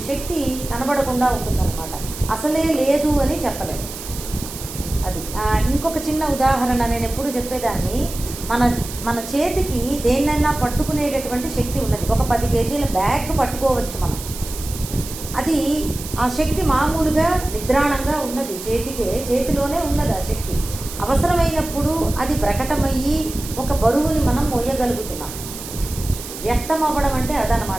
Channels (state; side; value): noise; right; hiss, 11 dB below the sound